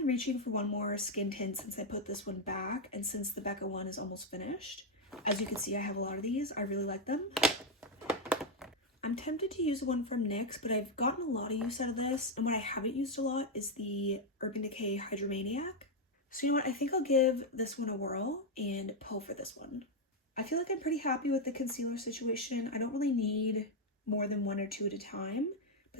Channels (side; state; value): both; normal; correlation 0.03